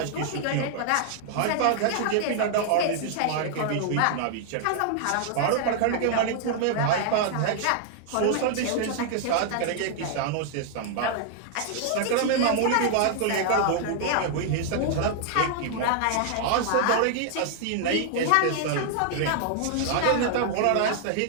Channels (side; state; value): both; different; correlation 0.00